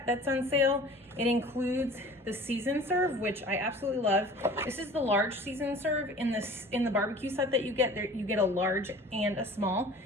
that's on sale. It includes the season serve, which I absolutely love. This is the large season serve. In the barbecue set that you get, you get a large and a small.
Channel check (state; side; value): normal; both; correlation 0.44